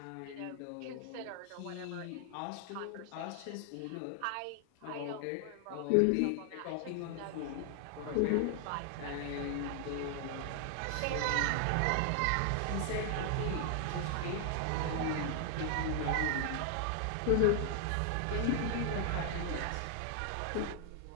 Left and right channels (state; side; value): different; both; correlation 0.00